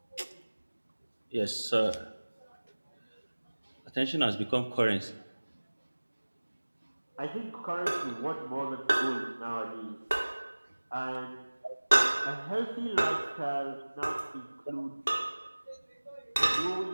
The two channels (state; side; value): inverted; both; correlation -1.00